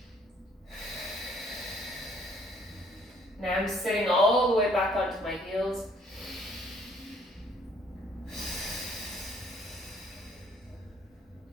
Now I'm sitting all the way back onto my heels.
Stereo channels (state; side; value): normal; both; correlation 0.62